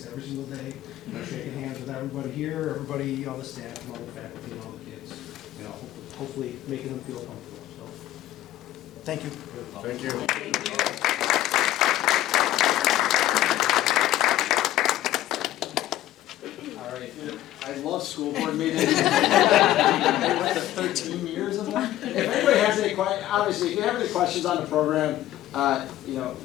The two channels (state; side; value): quieter; right; 14.1 dB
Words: every single day, shaking hands with everybody here, everybody, all the staff, and all the faculty, and all the kids. Hopefully making them feel comfortable. So, thank you. Thank you. All right. I love school board meetings. I went to 13 years of them. If anybody has any questions, obviously, if you have any questions on the program,